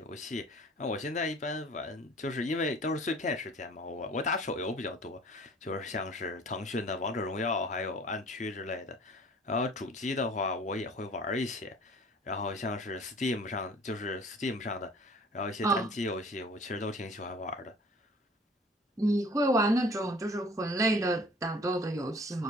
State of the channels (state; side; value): normal; both; correlation 0.49